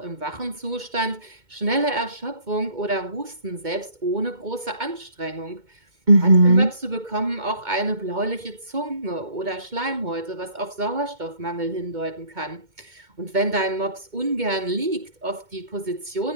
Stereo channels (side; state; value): left; late; 2.2 ms